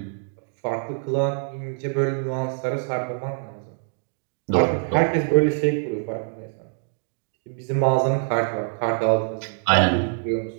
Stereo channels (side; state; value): left; silent; 62 dB below the other